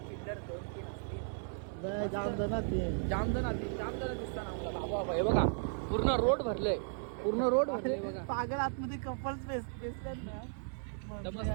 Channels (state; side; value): silent; left; digital silence